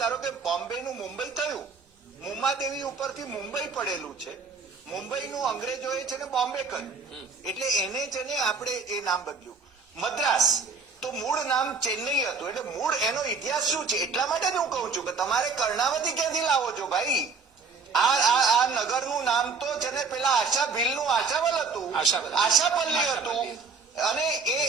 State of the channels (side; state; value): left; quieter; 4.8 dB